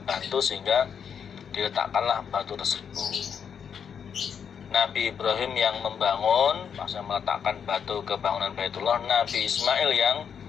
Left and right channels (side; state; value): right; quieter; 7.4 dB